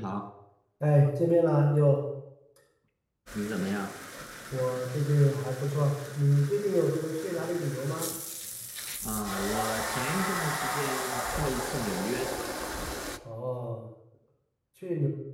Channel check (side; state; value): both; identical; correlation 1.00